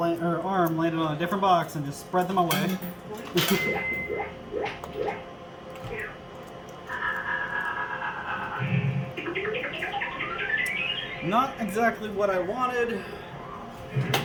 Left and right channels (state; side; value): identical; both; correlation 1.00